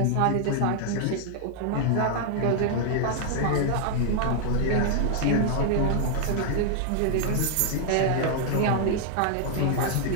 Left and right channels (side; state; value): both; different; correlation -0.01